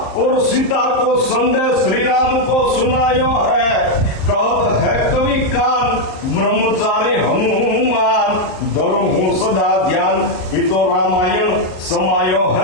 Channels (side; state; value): right; late; 38 ms